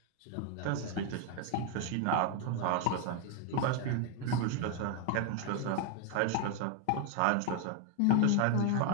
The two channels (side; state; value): both; different; correlation 0.01